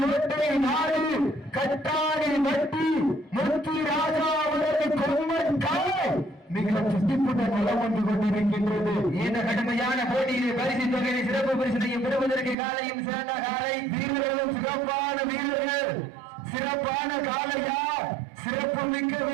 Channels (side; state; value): left; drops out; at 12.6 s